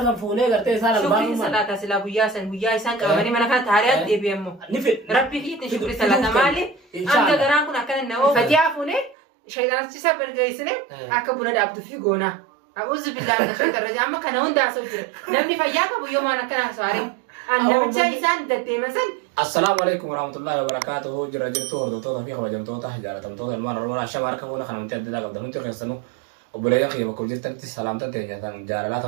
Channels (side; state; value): left; drops out; at 9.2 s